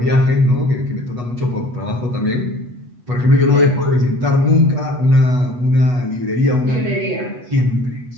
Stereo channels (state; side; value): late; left; 8.2 ms